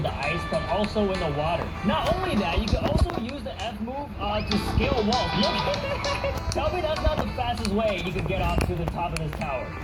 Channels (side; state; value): both; identical; correlation 1.00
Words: the ice, but also in the water. Not only that, you can also use the F move to scale walls. Look, tell me that's not the fastest way you can get up to the top of this tower.